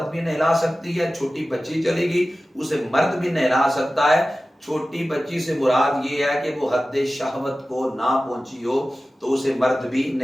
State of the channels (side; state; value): both; normal; correlation 0.96